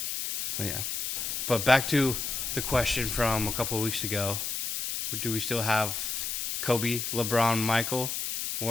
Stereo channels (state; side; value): noise; left; hiss, 3 dB below the sound